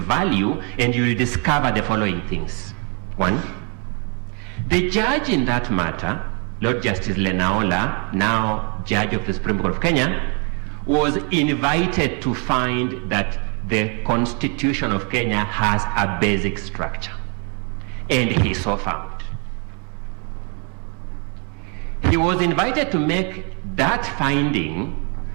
and you will discover the following things. One, the judge in that matter, Lord Justice Lenaola, now Judge of the Supreme Court of Kenya, was invited to find that the Constitution of Kenya has a basic structure. And he so found. He was invited to make that finding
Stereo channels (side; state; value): left; quieter; 36.6 dB